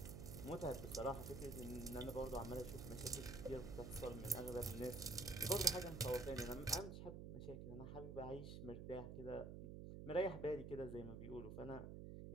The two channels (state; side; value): noise; right; hum, 7 dB below the sound